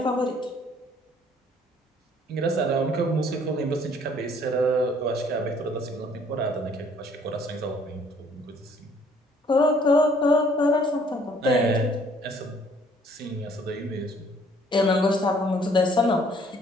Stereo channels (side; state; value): both; normal; correlation 0.60